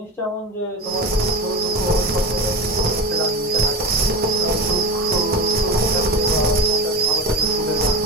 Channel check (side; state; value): both; normal; correlation 0.27